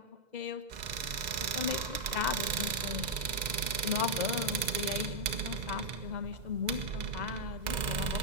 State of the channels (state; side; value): late; left; 2.0 ms